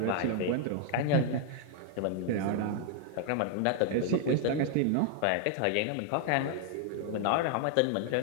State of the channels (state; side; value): different; both; correlation 0.00